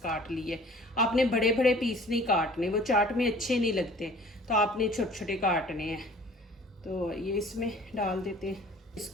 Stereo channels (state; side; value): normal; both; correlation 0.49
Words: लिए। आपने बड़े बड़े पीस नहीं काटने, वो चाट में अच्छे नहीं लगते, तो आपने छोटे छोटे काटने हैं। तो ये इसमें डाल देते हैं।